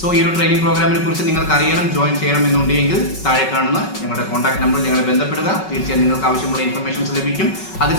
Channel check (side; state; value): right; late; 5.3 ms